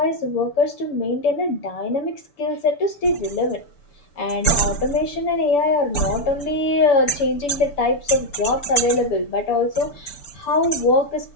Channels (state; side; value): late; right; 6.9 ms